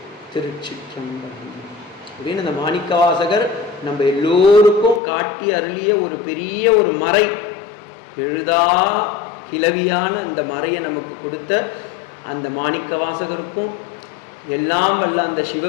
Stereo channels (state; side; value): drops out; right; at 5.0 s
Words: திருச்சிற்றம்பலம் அப்படின்னு இந்த மாணிக்க வாசகர் நம்ம எல்லோருக்கும் காட்டி அருளிய ஒரு பெரிய ஒரு மறை, எழுதா கிளவியான அந்த மறையை நமக்கு கொடுத்த அந்த மாணிக்க வாசகருக்கும் எல்லாம் வல்ல அந்த